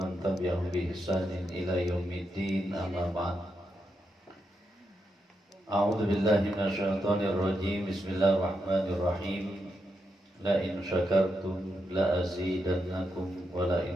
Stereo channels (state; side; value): normal; both; correlation 0.84